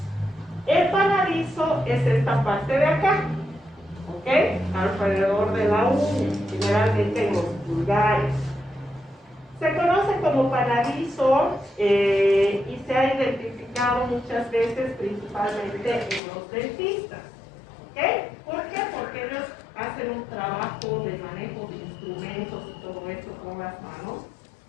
El panadizo es esta parte de acá, ¿ok? Alrededor de la uña, generalmente en los pulgares. Se conoce como panadizo y se ha identificado muchas veces principalmente en los dentistas. ¿Ok? ¿Por qué? Porque ellos hacen un trabajo de manejo de instrumentos y todo esto con las manos.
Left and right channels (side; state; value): right; drops out; at 16.2 s